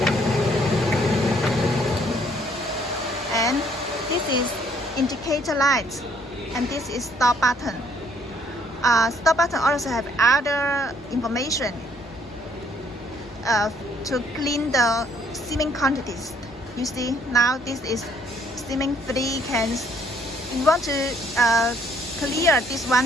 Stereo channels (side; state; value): both; normal; correlation 0.64